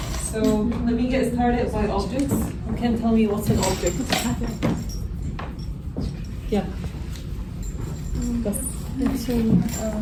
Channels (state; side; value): identical; both; correlation 1.00